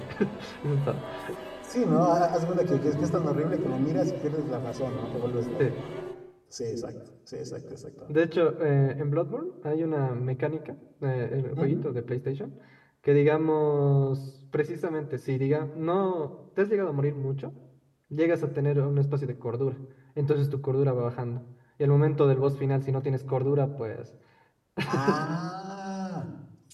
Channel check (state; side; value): identical; both; correlation 1.00